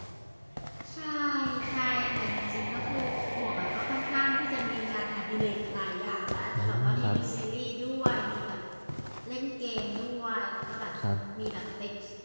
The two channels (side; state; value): both; inverted; correlation -1.00